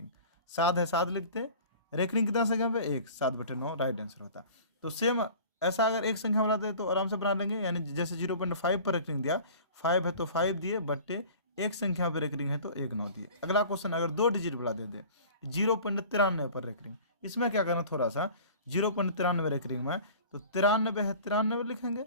7 है 7 लिखते, रेकरिंग कितना संख्या पे, 1, 7/9 राइट आंसर होता। तो सेम ऐसा अगर एक संख्या वाला दे तो आराम से बना लेंगे, यानी जैसे 0.5 पर रेकरिंग दिया, 5 है तो 5 दिए, बट्टे एक संख्या पर रेकरिंग है तो 1 9 दिए। अगला क्वेश्चन अगर 2 डिजिट वाला दे दे 0.93 पर रेकरिंग, इसमें क्या करना, थोड़ा सा 0.93 रेकरिंग में, तो 93 है 93 लिखेंगे,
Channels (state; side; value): inverted; both; correlation -0.43